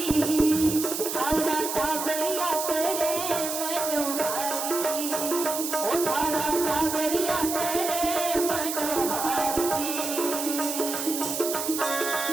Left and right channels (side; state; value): right; noise; hiss, 4 dB below the sound